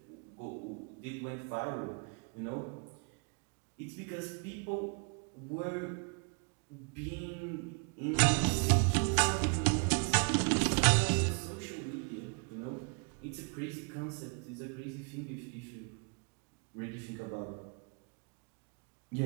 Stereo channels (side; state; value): left; quieter; 36.8 dB